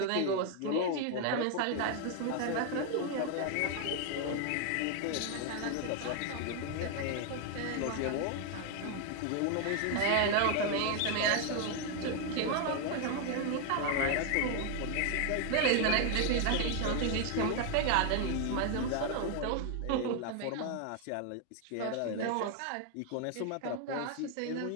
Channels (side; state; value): both; different; correlation 0.00